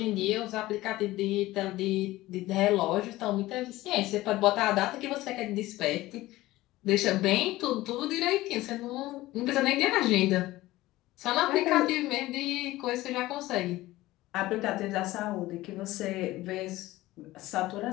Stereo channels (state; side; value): quieter; right; 17.5 dB